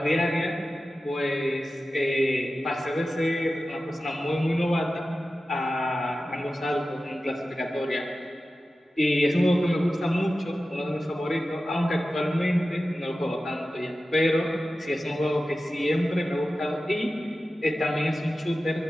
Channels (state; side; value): normal; both; correlation 0.94